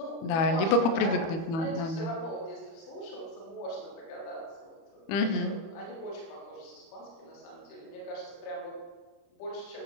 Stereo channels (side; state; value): right; late; 30 ms